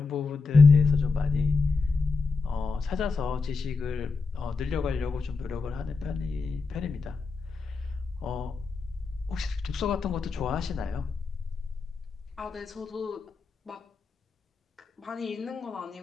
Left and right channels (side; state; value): right; quieter; 4.4 dB